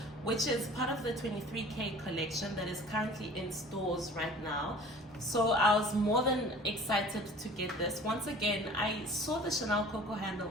which is part of the 23K collection that is currently in stores right now. So I was more than excited to get this. Once again, I saw the Chanel Coco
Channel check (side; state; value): both; normal; correlation 0.46